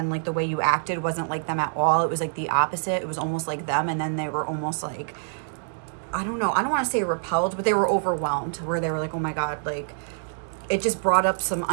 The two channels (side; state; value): left; silent; digital silence